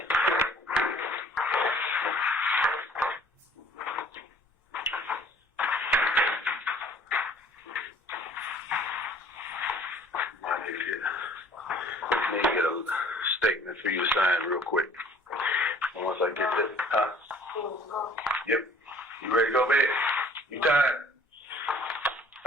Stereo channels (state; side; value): normal; both; correlation 0.54